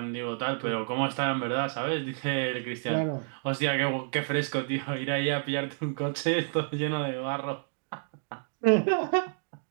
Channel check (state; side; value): silent; left; digital silence